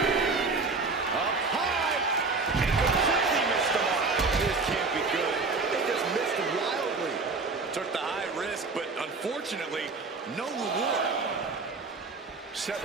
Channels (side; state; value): left; quieter; 4.0 dB